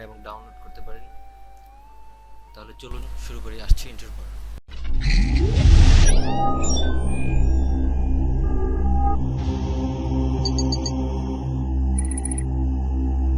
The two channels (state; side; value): identical; both; correlation 1.00